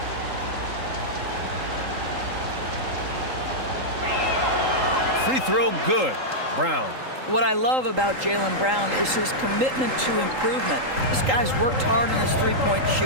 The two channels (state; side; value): late; left; 3.8 ms